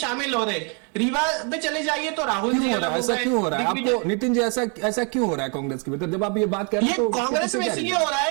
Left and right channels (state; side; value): quieter; left; 36.4 dB